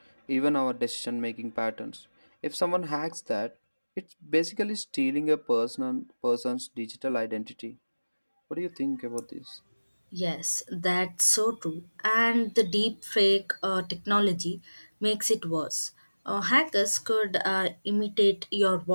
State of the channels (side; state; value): both; inverted; correlation -1.00